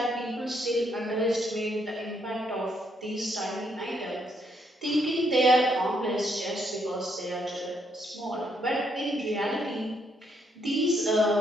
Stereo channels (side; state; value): both; normal; correlation 0.74